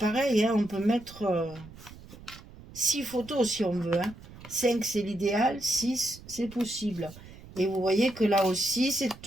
hein, on peut mettre 6 photos si on veut. Hein. 5 c'est l'idéal, 6 c'est possible. Et vous voyez que là aussi, c'est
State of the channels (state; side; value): noise; right; rumble, 18 dB below the sound